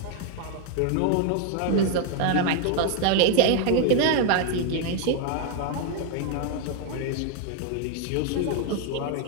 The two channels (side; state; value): both; different; correlation 0.01